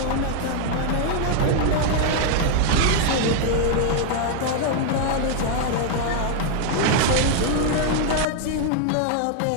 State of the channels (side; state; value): both; different; correlation 0.00